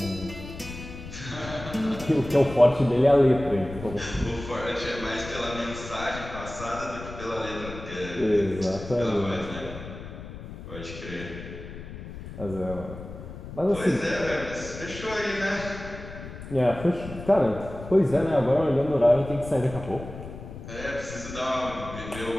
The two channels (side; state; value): left; noise; rumble, 12 dB below the sound